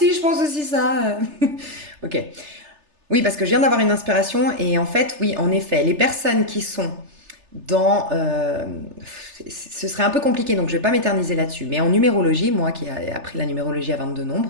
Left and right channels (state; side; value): late; left; 3.3 ms